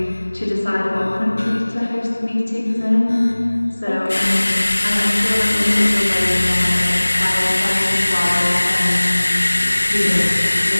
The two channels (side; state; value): both; inverted; correlation -1.00